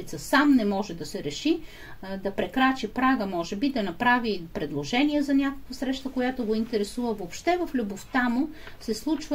сам не може да се реши, да прекрачи прага, може би, да направи предложение за някаква среща, която го интересува. Въобще в любовта му се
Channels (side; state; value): both; identical; correlation 1.00